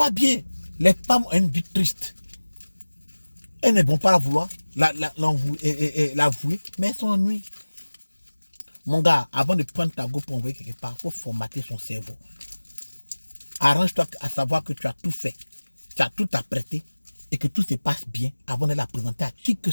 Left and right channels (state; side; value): inverted; both; correlation -1.00